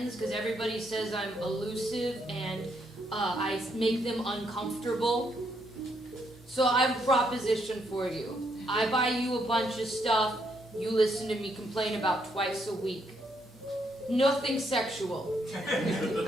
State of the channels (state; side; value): normal; both; correlation 0.75